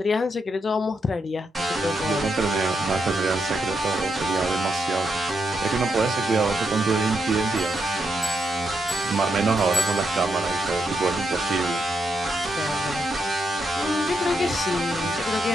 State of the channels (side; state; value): both; normal; correlation 0.82